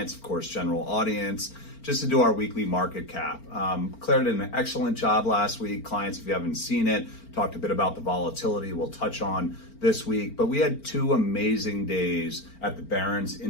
of course, general audience, just to do our weekly market cap. Claire did an excellent job last week. Clients, if you haven't seen it, talked a bit about the volatility we'll touch on this week. But we had two amazing days at the Barron's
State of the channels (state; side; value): late; right; 4.4 ms